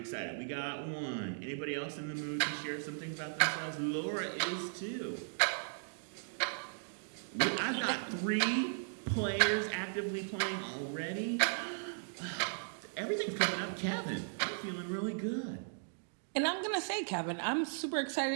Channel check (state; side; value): silent; left; digital silence